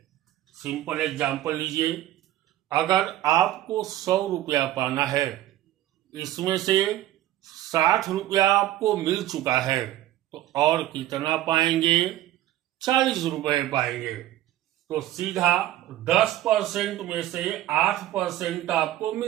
सिंपल एग्जांपल लीजिए। अगर आपको 100 रुपया पाना है, इसमें से 60 रुपया आपको मिल चुका है, तो और कितना पाएंगे? 40 रुपए पाएंगे। तो सीधा 10% में से 8% आपको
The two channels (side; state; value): left; quieter; 14.0 dB